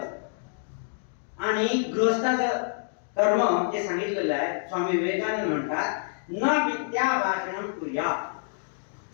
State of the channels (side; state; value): right; silent; digital silence